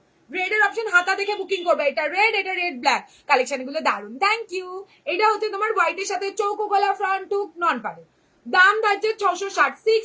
রেড এর অপশন, হাতা দেখে বুকিং করবে। এটা রেড ব্ল্যাক, কালেকশন গুলো দারুন, থ্যাংক ইউ। এটা হচ্ছে তোমার হোয়াইটের সাথে চৌকো গলা, ফ্রন্ট টুক নন পারে। দাম থাকছে 660,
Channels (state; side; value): identical; both; correlation 1.00